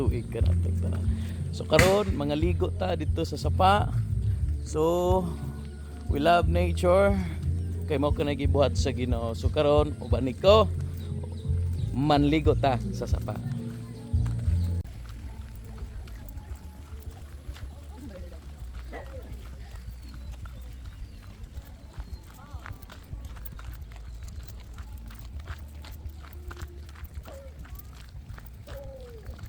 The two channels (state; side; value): identical; both; correlation 1.00